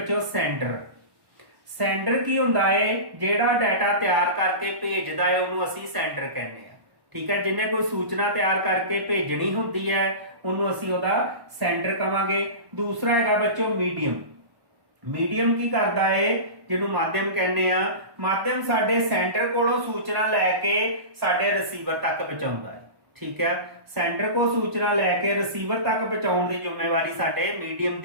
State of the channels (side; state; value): left; late; 1.1 ms